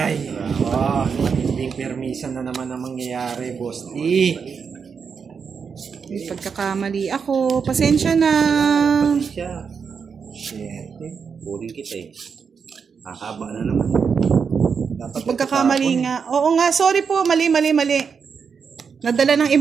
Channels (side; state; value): left; quieter; 6.1 dB